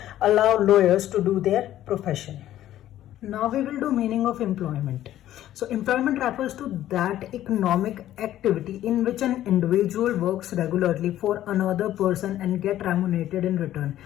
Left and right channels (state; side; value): quieter; right; 12.9 dB